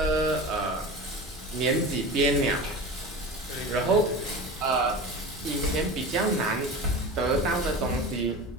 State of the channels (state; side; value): normal; both; correlation 0.31